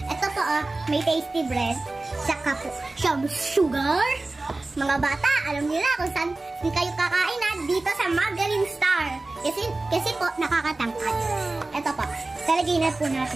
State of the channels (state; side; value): quieter; left; 3.1 dB